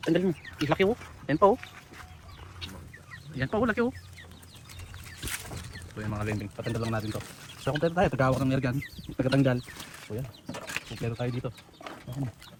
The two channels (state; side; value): identical; both; correlation 1.00